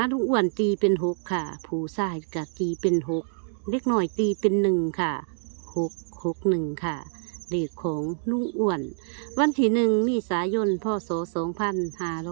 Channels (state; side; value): silent; left; 61 dB below the other